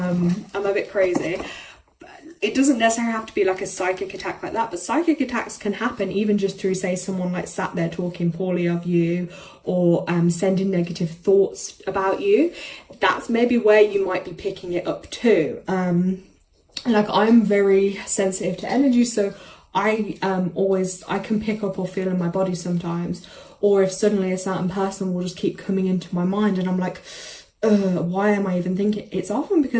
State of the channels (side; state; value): both; identical; correlation 1.00